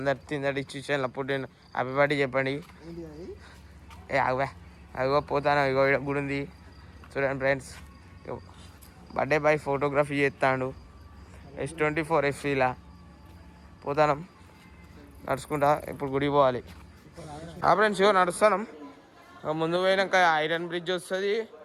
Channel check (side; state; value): both; identical; correlation 1.00